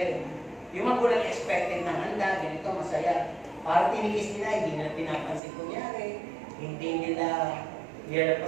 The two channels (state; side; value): drops out; left; at 5.4 s